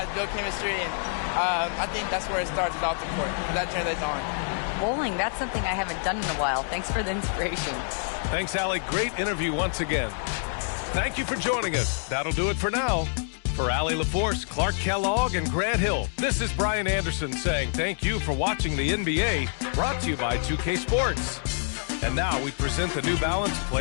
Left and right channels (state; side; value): silent; right; digital silence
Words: build chemistry, and I think that's where it starts is off the court. That translates on. Bowling, that's something I haven't done in a while. Thanks for the inspiration. Thanks, Allie. Great interview once again. Thank you for joining us. That'll do it for now. For Allie LaForce, Clark Kellogg, and Grant Hill, this is Brian Anderson saying thank you for watching the NBA, brought to you by 2K Sports. And now we present the New Balance